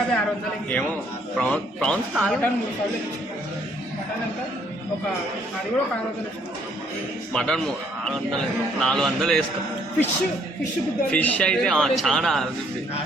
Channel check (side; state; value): both; normal; correlation 0.66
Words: 600 ఏమో ప్రాన్స్ మటన్ 3000 మటన్ ఎంత ఒక అది కూడా 600 మటన్ 400 వేస్తాం ఫిష్ అయితే చాలా